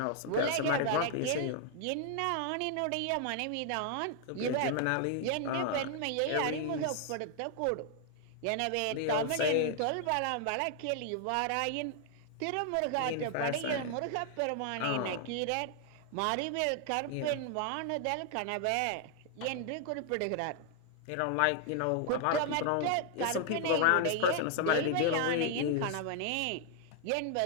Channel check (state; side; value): different; both; correlation 0.00